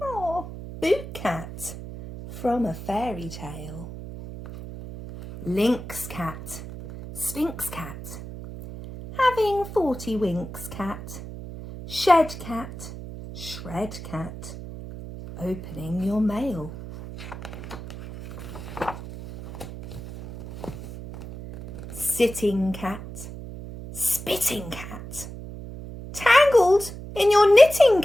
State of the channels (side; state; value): right; noise; hum, 11 dB below the sound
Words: boot cat, from a fairy tale. Lynx cat, sphinx cat, having 40 winks cat. Shed cat, shred cat, opening your mail. Sitting cat, spitting cat, tangled in your knitting